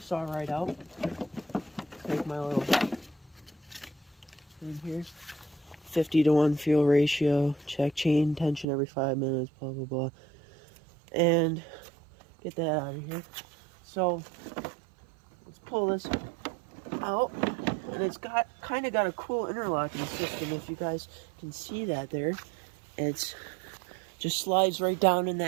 saw right out. Take my little thing here. 50-to-1 fuel ratio, check chain tension every 5 minutes, blah blah blah, and get that out of here. So let's pull this out, and it's got kind of got a cool interlocking system. If you guys can see that there, it's just slides right down in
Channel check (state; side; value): drops out; left; at 8.7 s